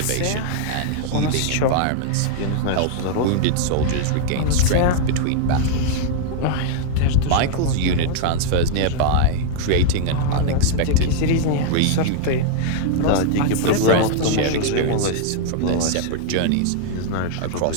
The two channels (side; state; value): both; different; correlation -0.01